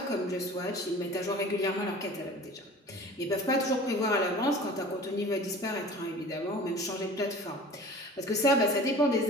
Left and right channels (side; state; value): both; normal; correlation 0.42